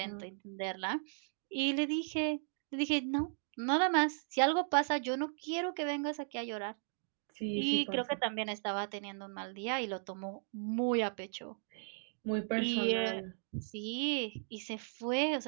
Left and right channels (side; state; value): left; silent; digital silence